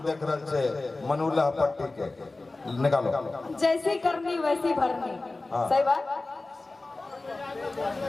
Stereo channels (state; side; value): quieter; right; 3.2 dB